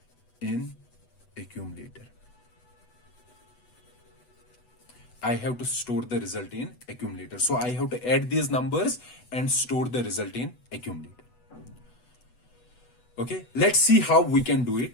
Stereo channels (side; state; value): right; late; 8.1 ms